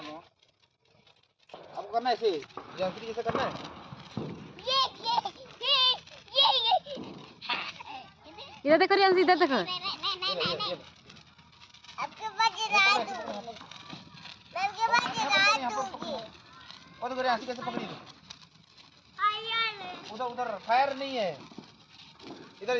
घुमाओ। आपको करना है ऐसे जंतरी जैसे करना है। इधर देखो रियांश, इधर देखो। और तो रियांश कैसे पकड़ी? उधर उधर फायर नहीं है, इधर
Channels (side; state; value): both; identical; correlation 1.00